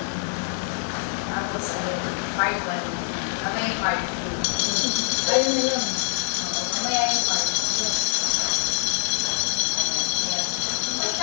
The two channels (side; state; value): right; silent; 60 dB below the other